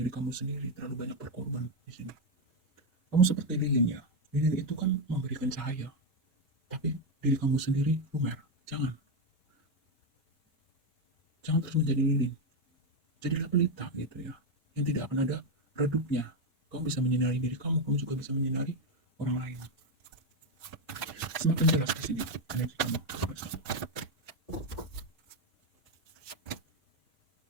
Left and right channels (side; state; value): both; normal; correlation 0.07